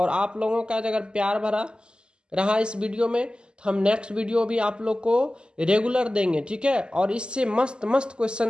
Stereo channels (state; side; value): late; left; 0.049 ms